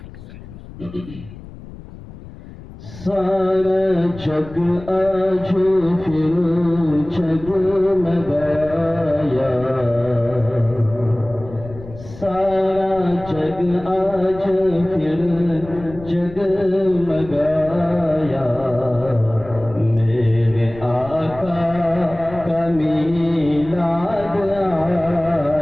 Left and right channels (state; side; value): noise; left; rumble, 16 dB below the sound